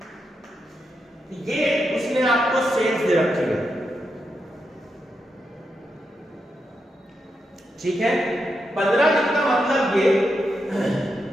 ये उसने आपको सेल्स दे रखी है। ठीक है। 15 दिन का मतलब ये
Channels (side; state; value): both; normal; correlation 0.84